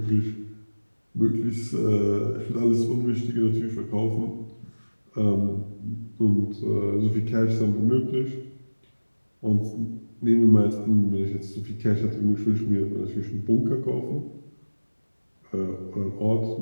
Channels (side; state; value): both; inverted; correlation -1.00